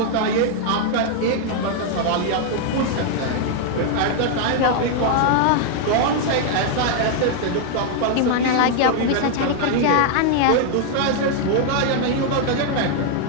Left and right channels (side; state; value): both; different; correlation 0.00